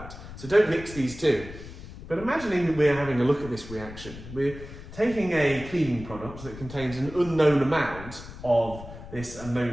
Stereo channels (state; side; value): noise; left; rumble, 14 dB below the sound